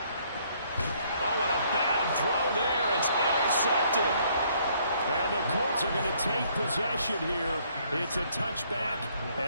Oh, and a bad throw there. It's intercepted. And the Colts are going to take possession here. It's a touchback,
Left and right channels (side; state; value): both; inverted; correlation -0.65